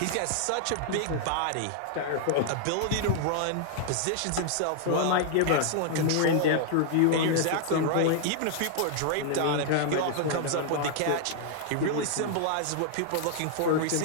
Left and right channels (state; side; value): different; both; correlation 0.00